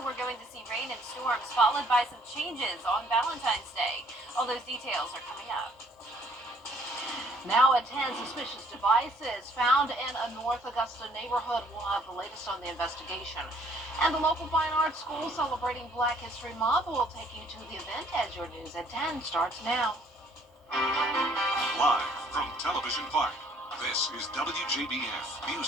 we're going to see rain and storms, followed by some changes on Valentine's Day. All those details are coming up. Now at 10, suspicious devices found in a North Augusta neighborhood. We'll have the latest on the investigation. And the local fine arts school celebrating Black History Month will take you to the event as your news at 10 starts now. Live from Television Park, this is WJBF News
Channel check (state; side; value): normal; both; correlation 0.61